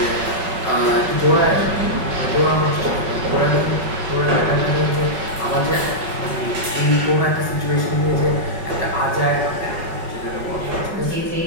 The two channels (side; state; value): left; late; 5.3 ms